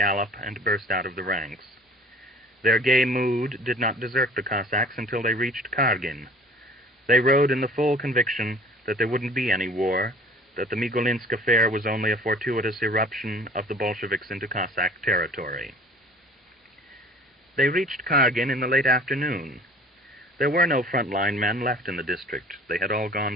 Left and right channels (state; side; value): normal; both; correlation 0.48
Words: and burst out of the ranks. Their gay mood did not desert the Cossacks until they reached Kargin. They rode in the full conviction that there wouldn't be any war, that the Migulinsk affair was only a fortuitous eruption of the Bolsheviks into Cossack territory. They reached Kargin in the late afternoon. There were no front-line men left in the district. They had all gone